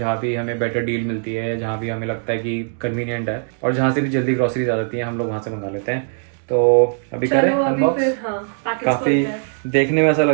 भी हमें बेटर डील मिलती है, जहाँ भी हमें लगता है कि कन्वीनियंट है, और जहाँ से भी जल्दी ग्रोसरीज आ जाती है हम लोग वहाँ से मंगा लेते हैं। तो अभी करें अनबॉक्स। काफी देखने में ऐसा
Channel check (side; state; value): left; silent; 66 dB below the other